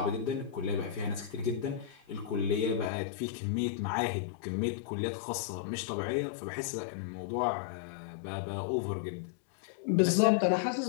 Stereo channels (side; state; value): right; drops out; at 2.9 s